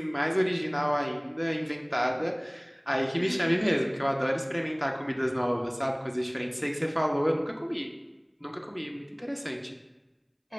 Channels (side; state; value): both; identical; correlation 1.00